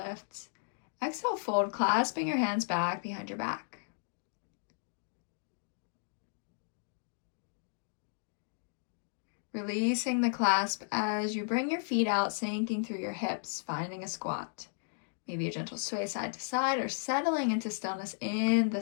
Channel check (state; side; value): silent; right; digital silence